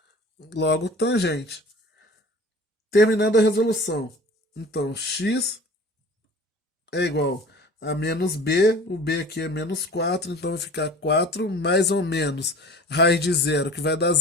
Logo, tangente. Terminando a resolução. Então, x é igual a menos b, o b aqui é menos 4, então vai ficar 4 mais ou menos raiz de zero, que vai dar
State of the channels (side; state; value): both; normal; correlation 0.43